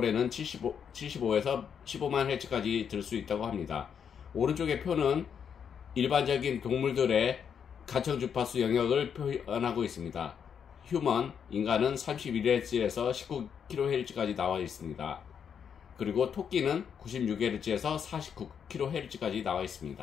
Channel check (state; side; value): quieter; right; 7.5 dB